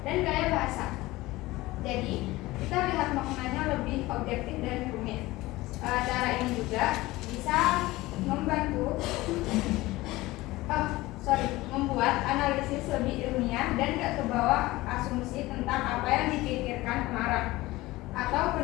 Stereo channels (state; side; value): quieter; right; 19.1 dB